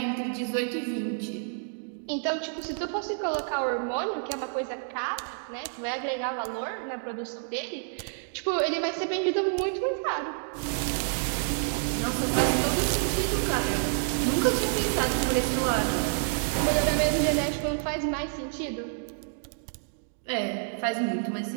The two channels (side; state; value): left; silent; digital silence